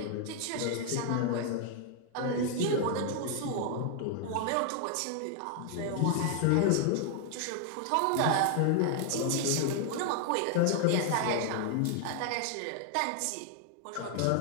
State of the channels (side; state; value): both; different; correlation 0.00